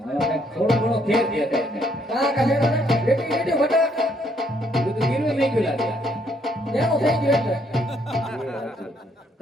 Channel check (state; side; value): normal; both; correlation 0.70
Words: કંઈક થોડો ઘણો ફેર દેખાય છે. કા કા છેડો ને રેટી રેટી વટા બધું ગીરવે નહીં ગયું લાગે. એનું થઈ ગયું એટલે.